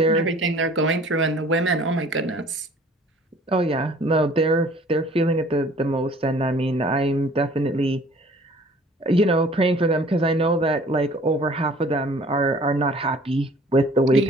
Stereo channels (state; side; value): normal; both; correlation 0.52